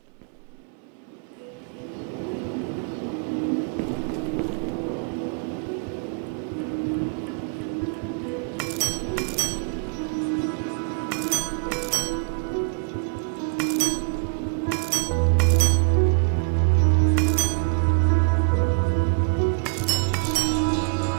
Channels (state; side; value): quieter; left; 39.5 dB